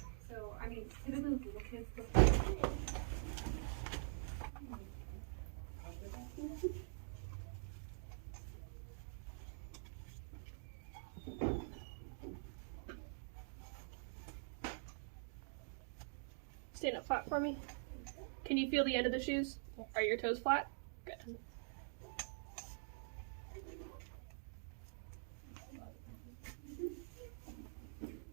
So I mean, typically with little kids, Stand up flat for me. Can you feel the end of the shoes? Are your toes flat? Good.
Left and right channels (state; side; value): silent; left; digital silence